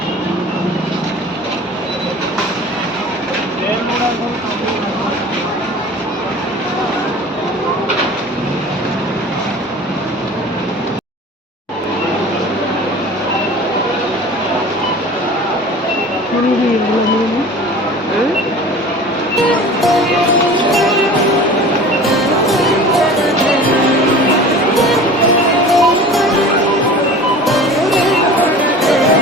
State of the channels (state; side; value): normal; both; correlation 0.40